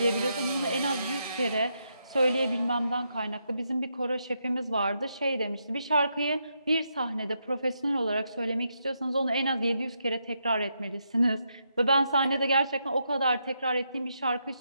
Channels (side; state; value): both; inverted; correlation -0.81